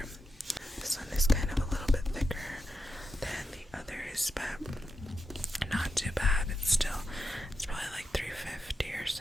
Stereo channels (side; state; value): both; normal; correlation 0.87